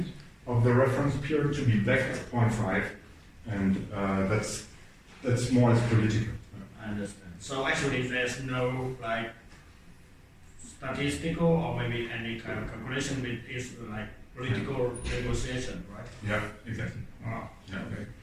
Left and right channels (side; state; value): both; identical; correlation 1.00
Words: of the reference period, to be back at 0.5, and that's more or less political. I understand. So actually, there's no like statistical or maybe any kind of calculation with this like political negotiation, right? Yeah, exactly. Wow. Yeah, okay.